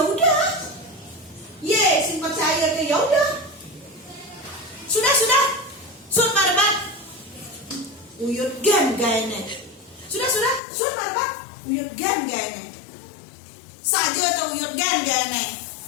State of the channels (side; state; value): right; drops out; at 10.6 s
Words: udah. Sing percaya ke, ya udah. Sudah. Sur marbat. Uyut gan gaene. Sudah. Sur marbat. Uyut gan gaene. Saja tuh uyut gan gaene.